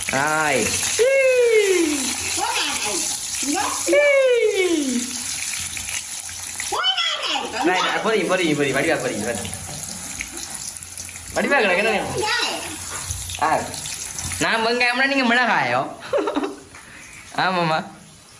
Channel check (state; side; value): identical; both; correlation 1.00